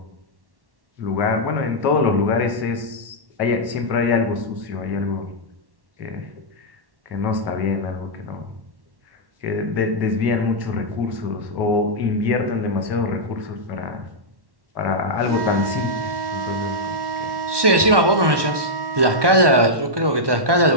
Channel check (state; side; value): late; left; 1.2 ms